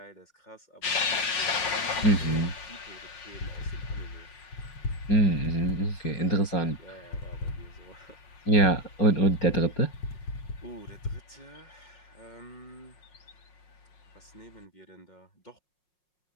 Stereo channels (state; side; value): late; right; 5.5 ms